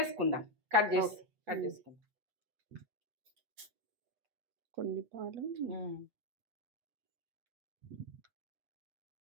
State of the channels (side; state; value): left; late; 8.3 ms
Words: కట్ చేసుకుందాం. కొన్ని పాలు,